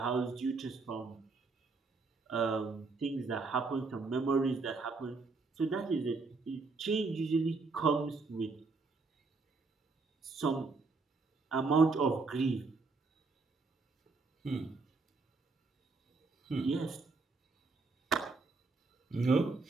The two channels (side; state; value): left; quieter; 4.0 dB